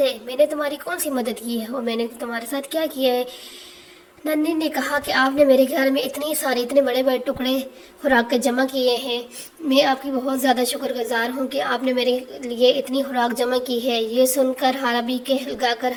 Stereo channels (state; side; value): identical; both; correlation 1.00